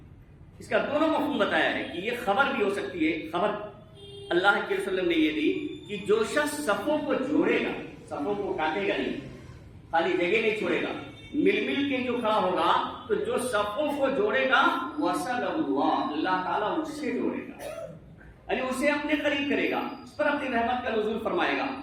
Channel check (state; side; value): identical; both; correlation 1.00